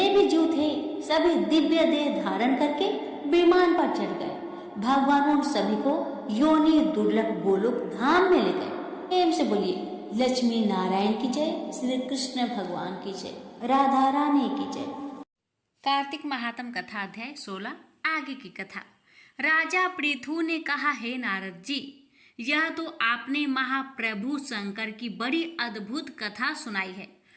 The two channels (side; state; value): both; identical; correlation 1.00